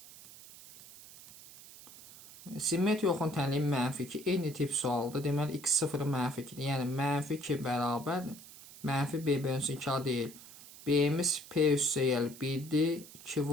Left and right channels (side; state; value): right; noise; hiss, 18 dB below the sound